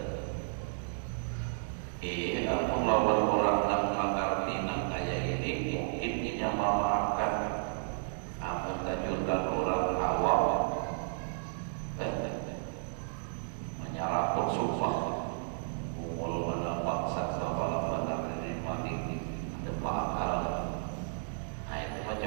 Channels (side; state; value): left; silent; digital silence